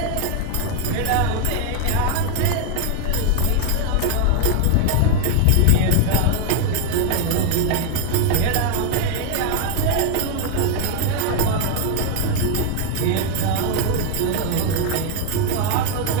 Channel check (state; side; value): different; both; correlation 0.01